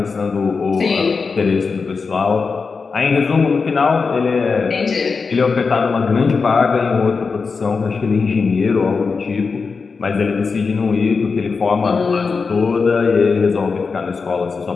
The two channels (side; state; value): right; quieter; 4.8 dB